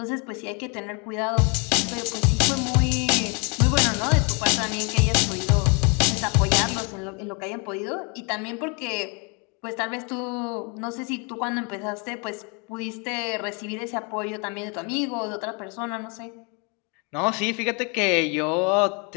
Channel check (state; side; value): quieter; right; 33.5 dB